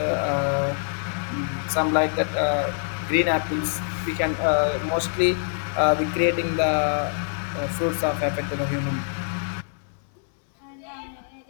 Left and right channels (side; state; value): right; silent; 61 dB below the other